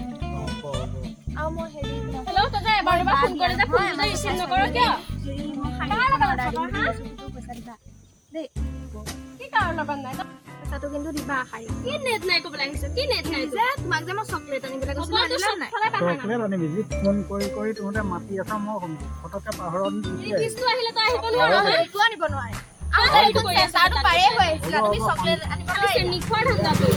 আৰু মই হেৰি হেল্ল' তই যে এবাৰ দুবাৰ ফোন কৰি যে ফোনটো ৰিচিভ নকৰ কিয় পইচা দিবা দেই কি কাৰণ লগত নাই পইচাটো কিন্তু দিবা শাৰী কি নেট নাই ক'বলৈ আহিছ কি নেট নাই যে তোমাক যে মই চকলেট আনিবলৈ কৈছিলো নাই চকলেট আনিবি যি ফোন কৰি তহঁতে মাতি আছা মই ফটককে পাহৰত ৰিচিভটো আহিলে তই আহিব নোৱাৰ একো আনিব নোৱাৰে পাৰে হৈ আহিছিলা তুমি চকলেট আনিব নিখোৱাৰ ধান্দা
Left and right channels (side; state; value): both; identical; correlation 1.00